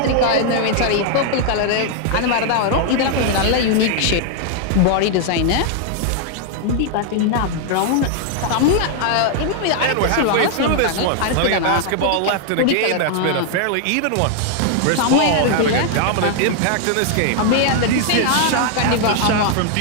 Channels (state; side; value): different; both; correlation 0.00